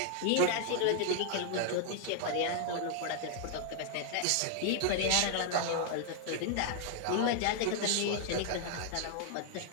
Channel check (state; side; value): different; both; correlation 0.00